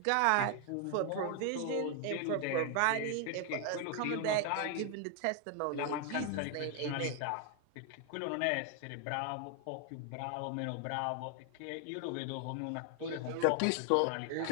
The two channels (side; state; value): both; different; correlation 0.00